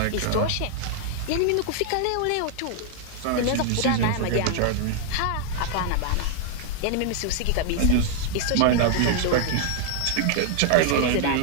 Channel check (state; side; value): different; both; correlation 0.00